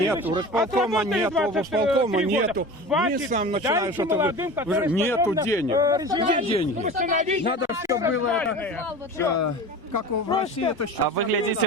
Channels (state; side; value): normal; both; correlation 0.34